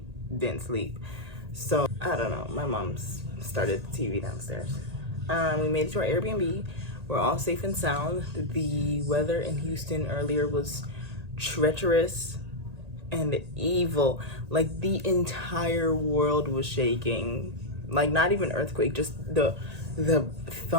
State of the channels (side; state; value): left; late; 1.8 ms